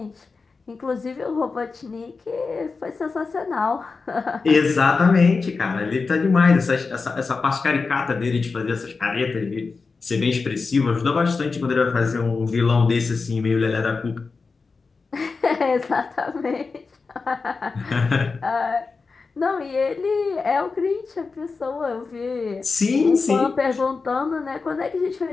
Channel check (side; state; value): right; quieter; 4.4 dB